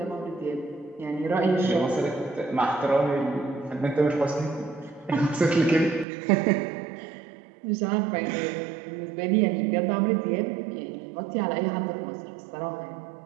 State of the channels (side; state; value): left; drops out; at 6.1 s